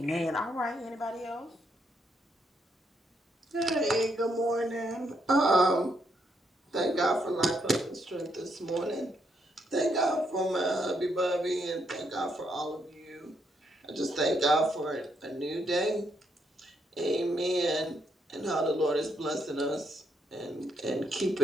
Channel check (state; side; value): normal; both; correlation 0.76